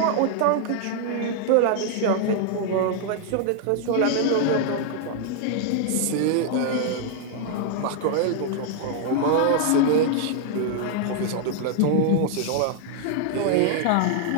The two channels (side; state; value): both; different; correlation 0.00